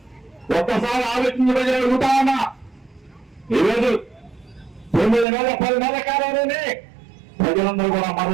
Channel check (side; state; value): left; drops out; at 5.2 s